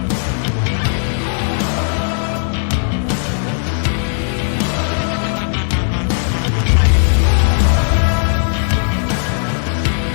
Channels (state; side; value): silent; right; digital silence